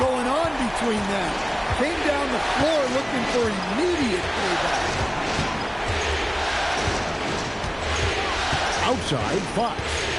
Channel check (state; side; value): identical; both; correlation 1.00